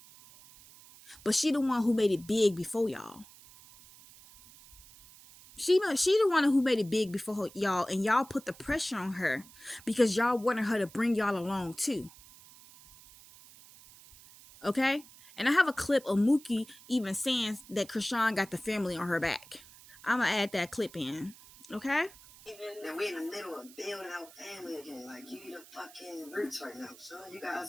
But she the one who made it big before y'all. She the one who made it big before y'all, and y'all put the pressure on her because y'all wanted her to bring y'all along too. Okay? And I have a clip of Mookie even saying that Krishan got the family on her back. I'm going to add that clip in. Okay? Now we're in the middle of building our family again. Like, you the fucking roots right now, son. You got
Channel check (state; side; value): noise; right; hiss, 21 dB below the sound